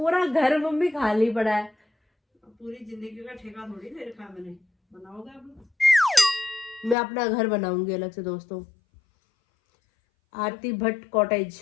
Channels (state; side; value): drops out; right; at 7.0 s